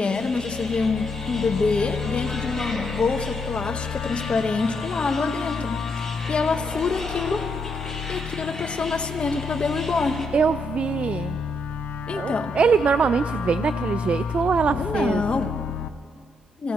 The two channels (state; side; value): normal; both; correlation 0.76